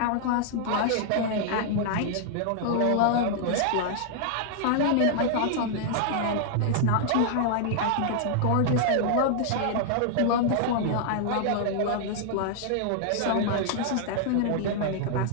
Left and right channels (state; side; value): different; both; correlation -0.01